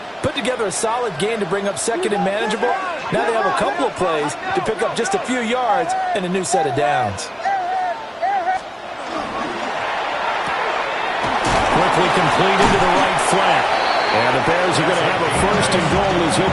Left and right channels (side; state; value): both; identical; correlation 1.00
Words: put together a solid gain to bring up 2nd and manageable. Now they have a couple of plays to pick up just a few yards and a new set of downs. Quickly complete into the right flat. And the Bears are going to have a 1st and goal as